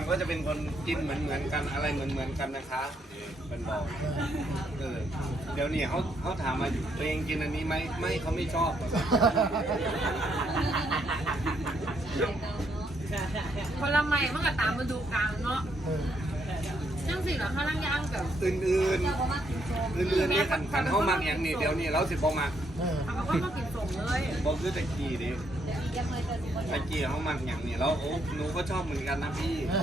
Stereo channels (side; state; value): both; normal; correlation 0.74